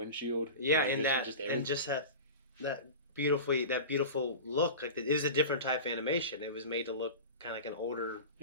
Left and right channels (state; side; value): inverted; both; correlation -0.30